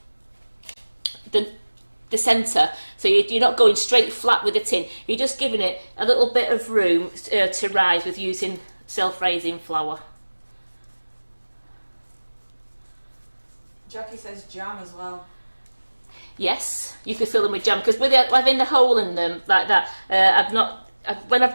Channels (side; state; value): both; inverted; correlation -1.00